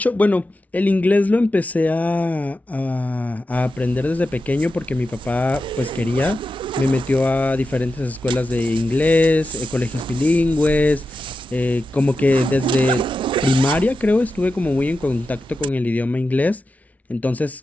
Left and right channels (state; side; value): normal; both; correlation 0.91